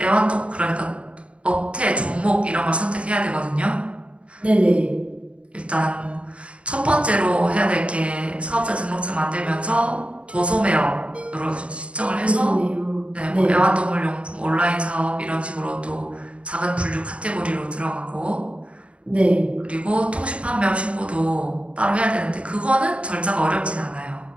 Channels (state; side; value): late; left; 0.061 ms